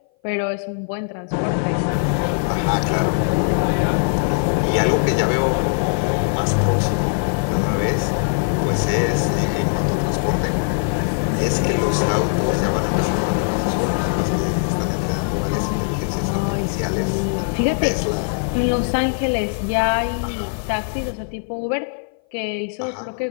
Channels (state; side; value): silent; right; 59 dB below the other